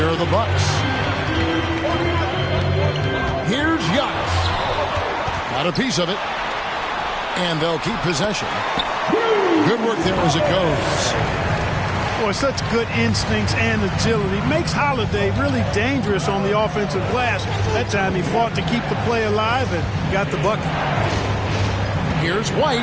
are the Bucks. Here's Giannis. Got a piece of it. And they'll keep possession. Good work there as it goes. Boy, such good instincts and agility. Makes Holiday really dangerous on the offensive glass. That time he fought to keep the play alive and got the bucket. Here's White.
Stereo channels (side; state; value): both; identical; correlation 1.00